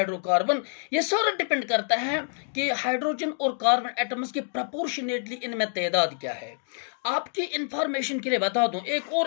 ये सारा डिपेंड करता है कि हाइड्रोजन और कार्बन एटम्स की प्रोपोर्शनेटली इनमें तादाद क्या है। आपकी इंफॉर्मेशन के लिए बता दूं, एक और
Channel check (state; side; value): silent; right; 60 dB below the other